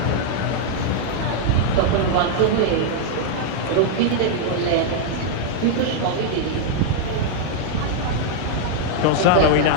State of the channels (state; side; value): different; both; correlation -0.01